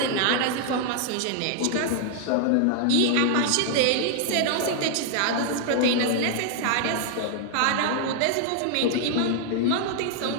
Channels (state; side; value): different; both; correlation 0.00